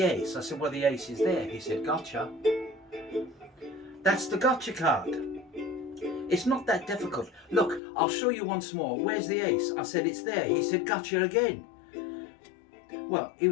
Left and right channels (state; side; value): drops out; right; at 7.8 s